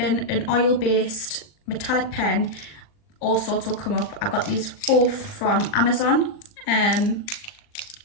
an oil-based metallic pen, all sorts will come up. I got these both from Amazon.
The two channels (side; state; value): right; late; 39 ms